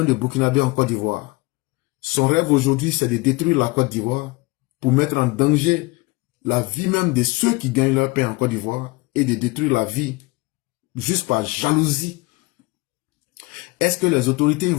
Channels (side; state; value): right; quieter; 24.2 dB